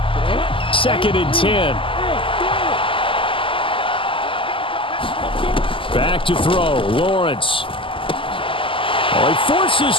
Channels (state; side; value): late; right; 0.25 ms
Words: 2nd and 10. Back to throw, Lawrence. Oh, he forces